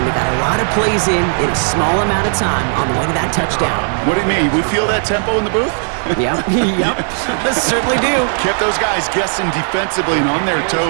They got a lot of plays in a small amount of time on the way to that touchdown. What do you mean? We feel that tempo in the booth? Yep, yep, certainly do. Kept those guys guessing defensively and on their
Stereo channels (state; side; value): silent; left; 57 dB below the other